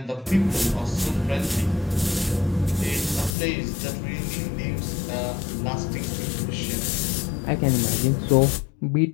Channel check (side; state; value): right; drops out; at 3.4 s